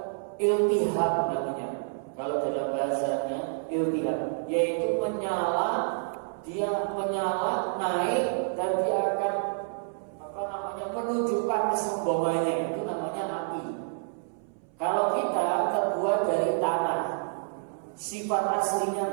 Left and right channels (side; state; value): left; silent; 59 dB below the other